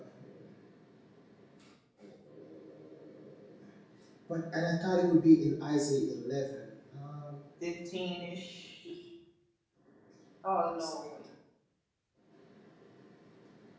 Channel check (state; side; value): identical; both; correlation 1.00